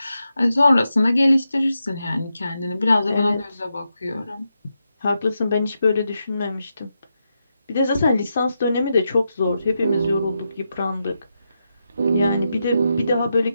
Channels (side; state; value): both; inverted; correlation -0.86